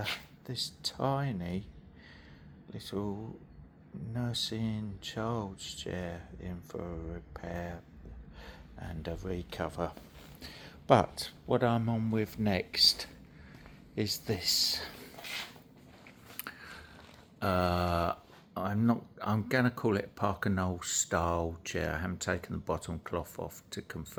this tiny little nursing child's chair in for a repair and a recover. But what I'm on with next is this. I'm gonna call it a Parker Knoll style chair. I haven't taken the bottom cloth off to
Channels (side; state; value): both; identical; correlation 1.00